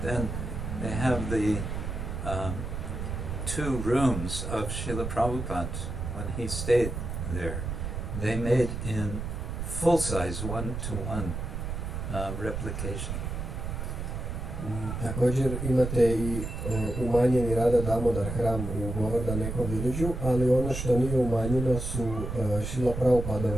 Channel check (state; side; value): noise; right; rumble, 5 dB below the sound